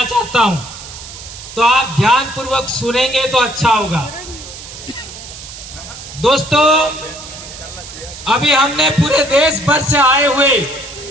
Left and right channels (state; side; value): noise; right; hiss, 14 dB below the sound